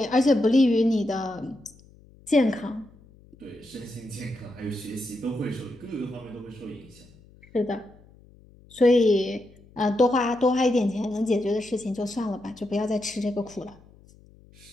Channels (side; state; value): left; noise; hum, 26 dB below the sound